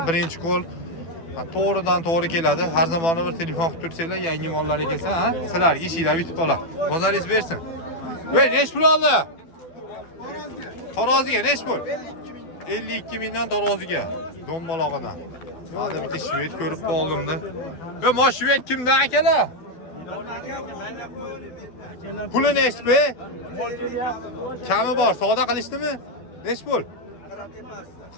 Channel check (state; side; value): late; right; 12 ms